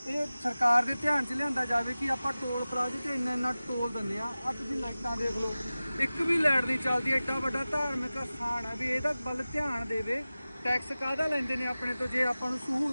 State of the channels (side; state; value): both; inverted; correlation -0.96